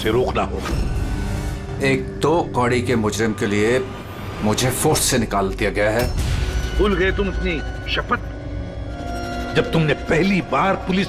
रोकना होगा। एक 2 कौड़ी के मुजरिम के लिए मुझे फोर्स से निकाल दिया गया है। भूल गए तुम अपनी शपथ जब तुमने पहली बार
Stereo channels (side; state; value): both; identical; correlation 1.00